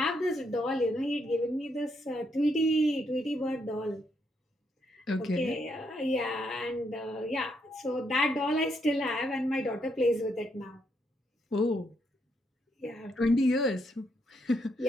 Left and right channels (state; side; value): normal; both; correlation 0.77